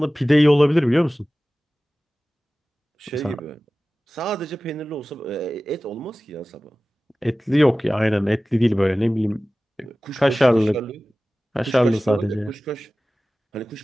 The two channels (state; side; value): normal; both; correlation 0.97